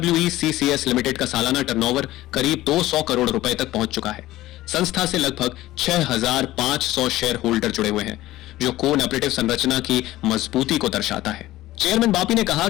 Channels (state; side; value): quieter; right; 16.2 dB